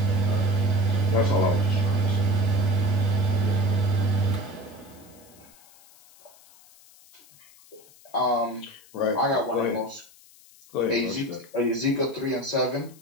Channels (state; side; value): noise; left; hiss, 25 dB below the sound